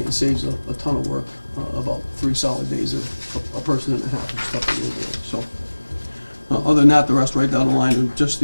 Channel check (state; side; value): inverted; both; correlation -1.00